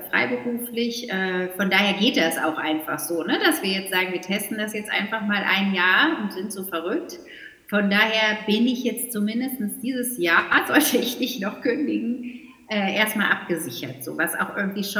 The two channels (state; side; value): identical; both; correlation 1.00